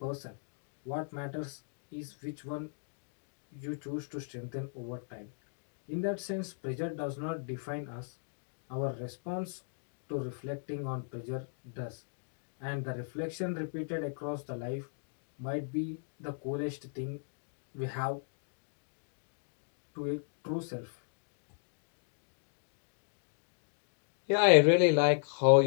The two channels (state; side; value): silent; right; digital silence